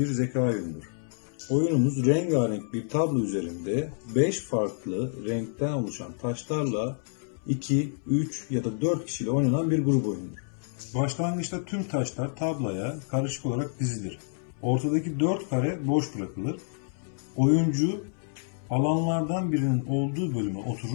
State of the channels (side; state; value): right; silent; 59 dB below the other